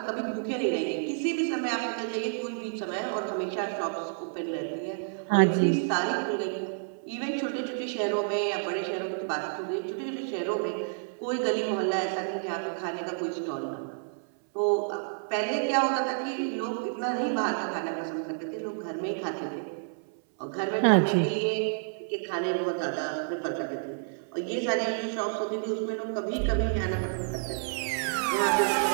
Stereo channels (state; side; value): silent; left; 58 dB below the other